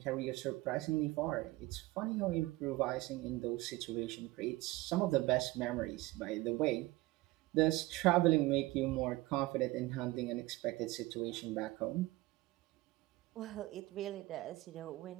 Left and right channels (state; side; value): quieter; left; 19.6 dB